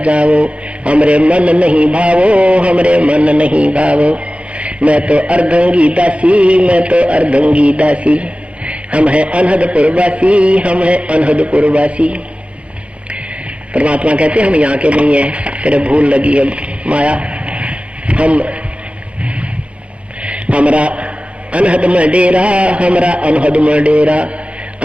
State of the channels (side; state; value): left; late; 0.062 ms